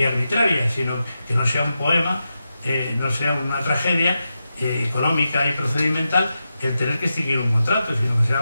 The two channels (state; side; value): inverted; both; correlation -0.89